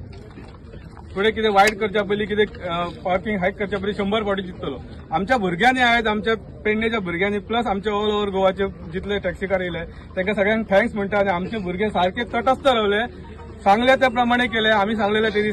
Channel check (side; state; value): both; identical; correlation 1.00